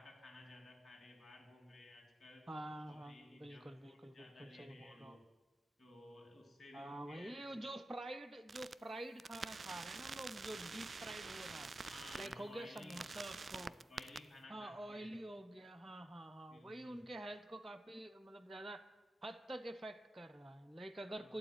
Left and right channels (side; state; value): both; normal; correlation 0.91